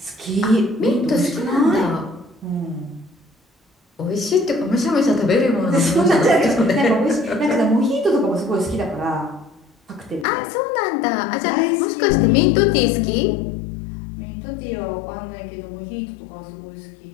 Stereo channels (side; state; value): right; drops out; at 10.2 s